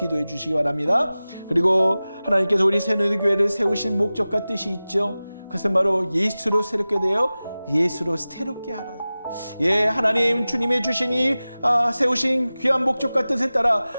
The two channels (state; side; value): inverted; both; correlation -0.97